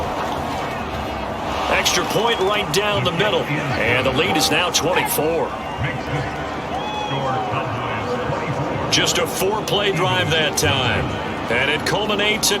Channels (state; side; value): identical; both; correlation 1.00